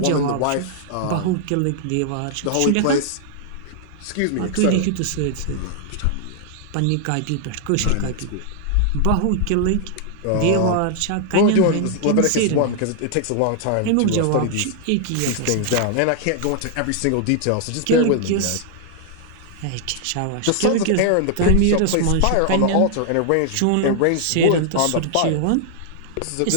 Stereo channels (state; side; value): different; both; correlation 0.00